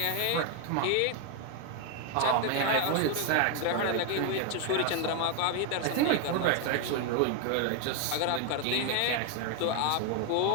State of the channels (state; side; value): different; both; correlation 0.01